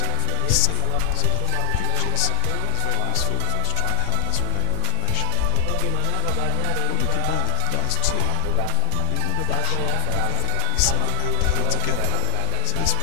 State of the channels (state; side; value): different; both; correlation 0.00